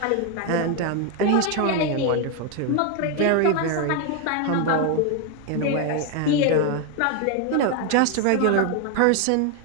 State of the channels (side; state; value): both; different; correlation 0.01